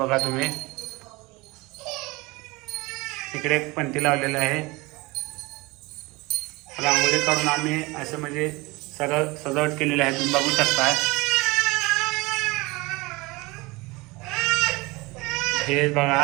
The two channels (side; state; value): left; quieter; 23.5 dB